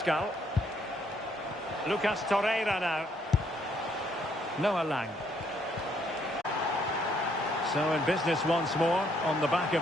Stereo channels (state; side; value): normal; both; correlation 0.69